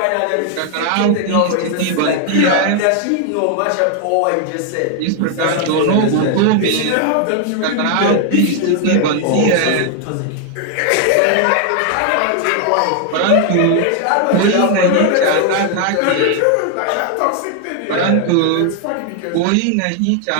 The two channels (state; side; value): different; both; correlation 0.00